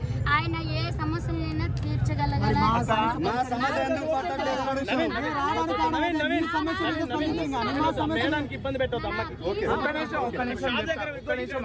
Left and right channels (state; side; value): identical; both; correlation 1.00